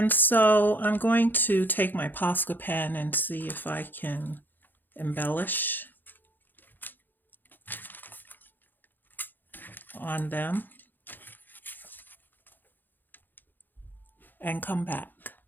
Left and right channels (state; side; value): late; right; 0.090 ms